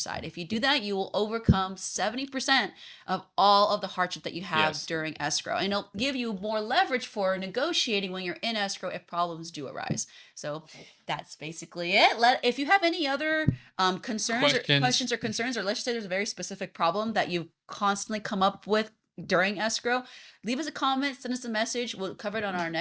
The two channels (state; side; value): identical; both; correlation 1.00